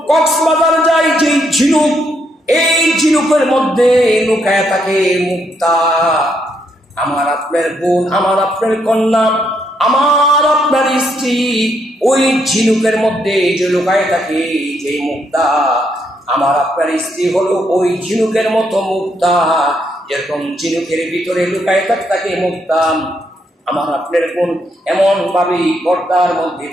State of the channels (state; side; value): normal; both; correlation 0.76